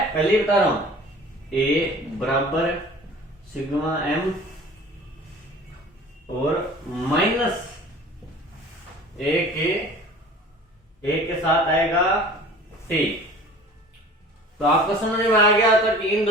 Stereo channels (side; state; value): both; normal; correlation 0.44